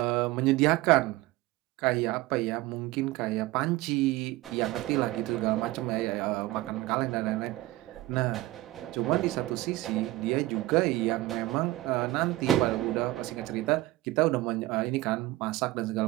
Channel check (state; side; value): quieter; left; 18.1 dB